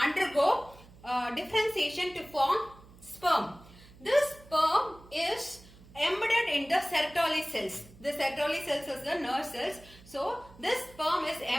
undergo differentiation to form sperm. This sperm is embedded in the Sertoli cells. The Sertoli cells is the nerve cells. So, this sperm is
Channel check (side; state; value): right; noise; hum, 22 dB below the sound